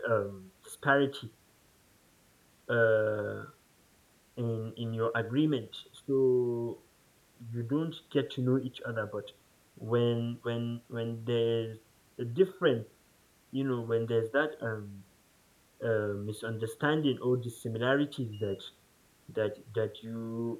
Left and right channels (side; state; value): both; identical; correlation 1.00